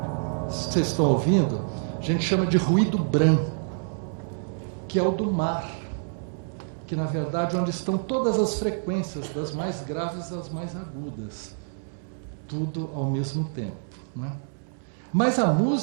Vocês estão ouvindo? A gente chama de ruído branco, que é o do mar, que na verdade é onde estão todas as frequências, das mais graves às mais agudas, tudo ao mesmo tempo, né? Mas a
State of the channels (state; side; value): silent; left; digital silence